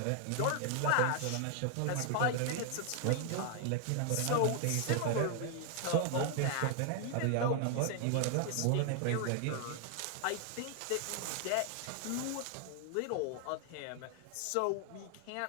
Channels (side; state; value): both; different; correlation 0.00